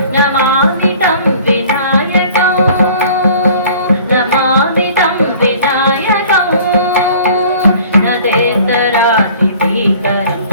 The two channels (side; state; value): both; inverted; correlation -0.50